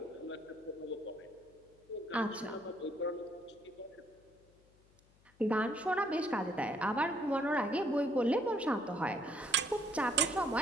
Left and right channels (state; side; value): noise; left; hum, 30 dB below the sound